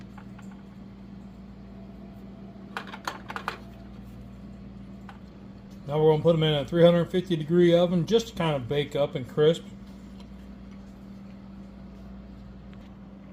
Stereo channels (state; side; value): identical; both; correlation 1.00